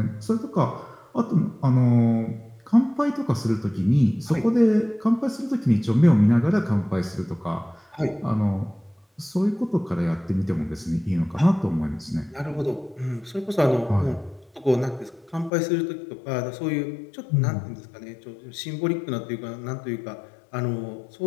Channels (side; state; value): right; drops out; at 15.5 s